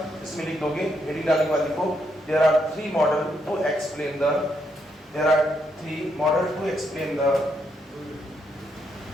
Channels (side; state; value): both; normal; correlation 0.77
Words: इसमें लिख दोगे, हेडिंग डालने के बाद लिखो, there are three model to explain the, there are three model to explain the,